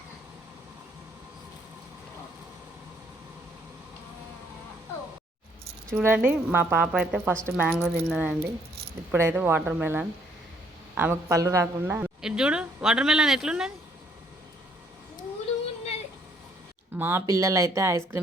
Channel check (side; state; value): both; normal; correlation 0.66